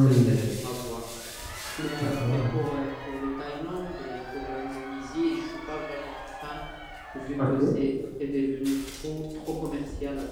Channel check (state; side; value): identical; both; correlation 1.00